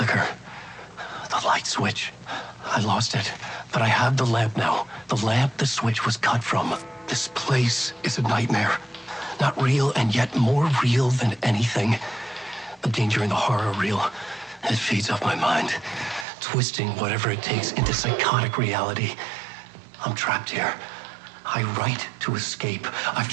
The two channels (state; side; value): drops out; left; at 16.2 s